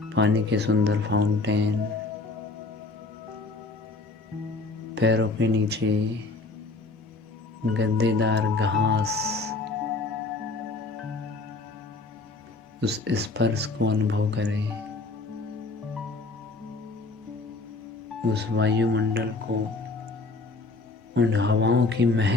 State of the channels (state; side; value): quieter; right; 3.4 dB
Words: पानी के सुंदर फाउंटेन, पैरों के नीचे गद्देदार घास, उस स्पर्श को अनुभव करें। उस वायुमंडल को, उन हवाओं की